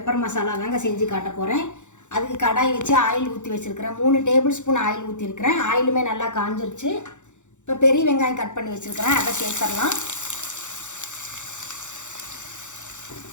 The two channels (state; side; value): late; right; 0.84 ms